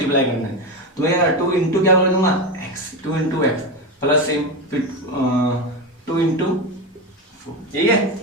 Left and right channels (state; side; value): normal; both; correlation 0.17